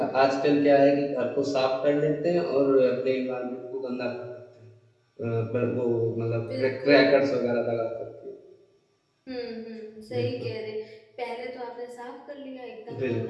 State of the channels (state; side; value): identical; both; correlation 1.00